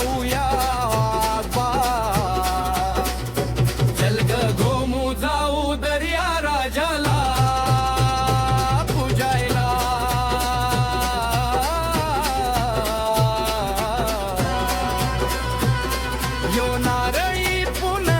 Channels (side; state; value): both; identical; correlation 1.00